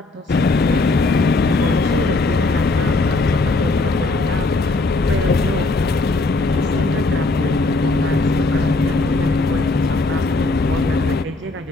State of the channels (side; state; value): right; quieter; 3.2 dB